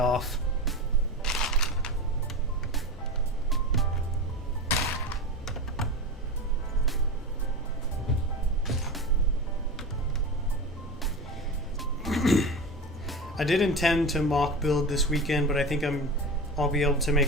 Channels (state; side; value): normal; both; correlation 0.26